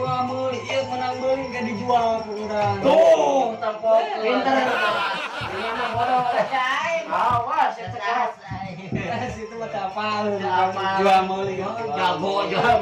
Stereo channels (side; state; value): both; identical; correlation 1.00